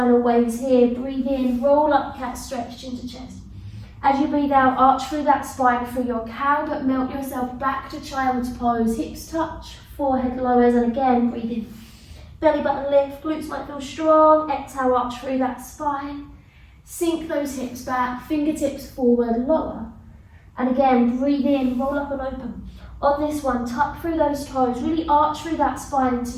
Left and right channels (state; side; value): identical; both; correlation 1.00